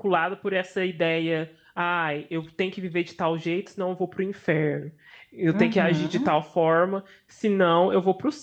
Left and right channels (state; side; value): identical; both; correlation 1.00